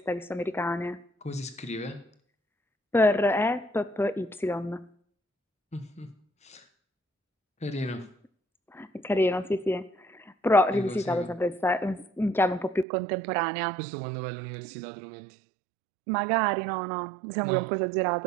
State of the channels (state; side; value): drops out; left; at 12.9 s